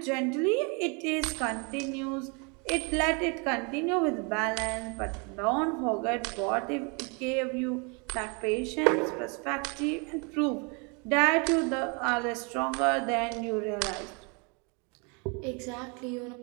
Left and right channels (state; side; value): quieter; left; 32.7 dB